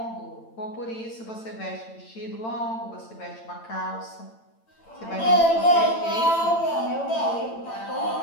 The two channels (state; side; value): late; right; 8.9 ms